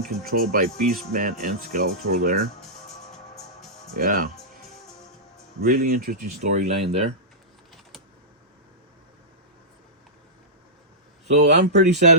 controlled by Beastman and Skeletor there. Yeah, really interesting storyline there. So I'm pretty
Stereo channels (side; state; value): both; normal; correlation -0.14